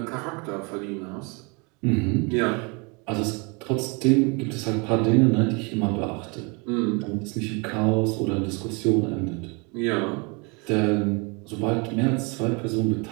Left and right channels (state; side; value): quieter; left; 31.0 dB